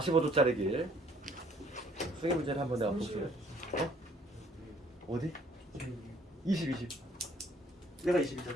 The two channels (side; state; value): both; normal; correlation 0.61